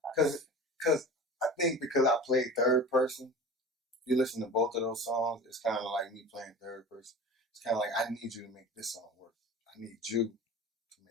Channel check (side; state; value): both; normal; correlation 0.36